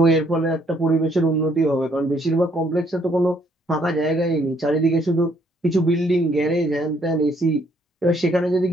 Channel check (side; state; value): both; normal; correlation 0.67